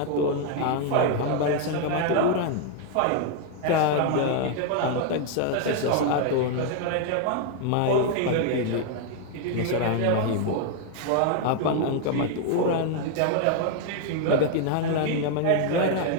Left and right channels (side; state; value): both; different; correlation 0.00